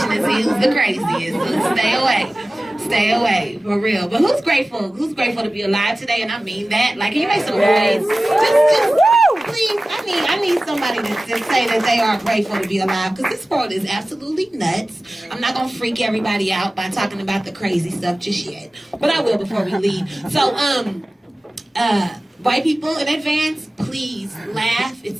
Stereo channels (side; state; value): both; normal; correlation 0.96